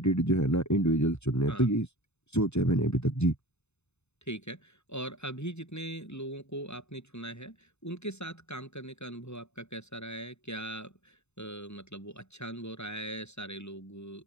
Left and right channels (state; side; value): late; right; 0.81 ms